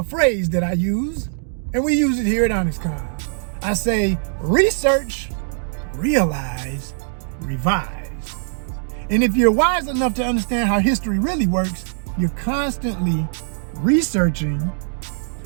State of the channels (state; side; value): silent; left; digital silence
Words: phrase that I use, and we use it here at Honest Con. I say, research, realize, revise. And if you're wise enough to understand how history really works, you're constantly researching,